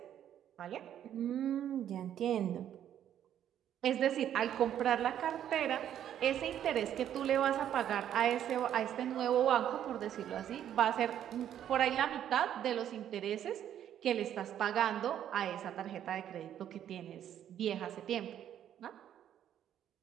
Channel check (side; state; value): left; quieter; 10.4 dB